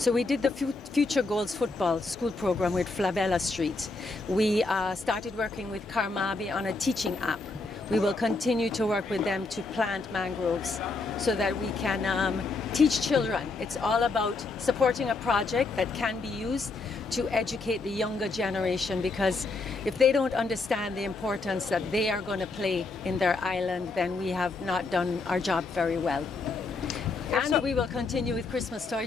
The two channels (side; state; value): right; quieter; 3.7 dB